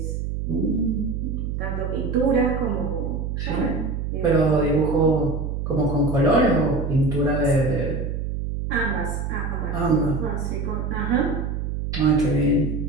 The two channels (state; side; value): noise; right; hum, 3 dB below the sound